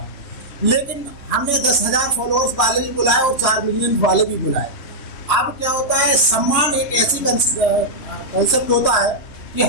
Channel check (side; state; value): right; late; 2.9 ms